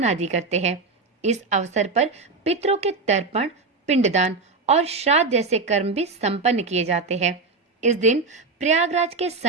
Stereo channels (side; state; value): left; quieter; 4.0 dB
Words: आदि करते हैं। इस अवसर पर पितरों के तर्पण, पिंडदान और श्राद्ध जैसे कर्म भी संपन्न किए जाते हैं। इस दिन प्रयागराज के